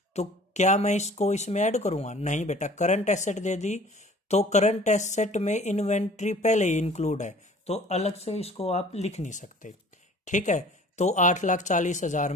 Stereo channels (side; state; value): both; normal; correlation 0.49